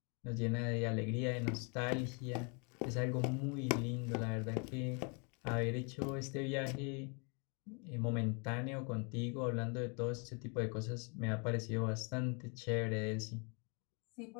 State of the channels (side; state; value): right; quieter; 34.9 dB